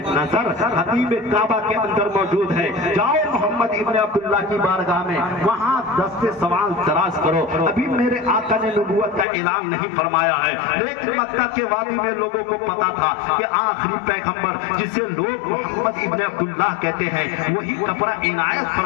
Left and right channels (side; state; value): right; drops out; at 9.2 s